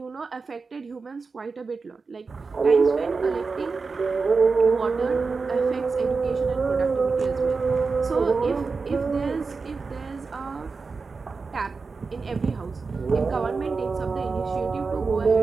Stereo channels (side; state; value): left; quieter; 4.5 dB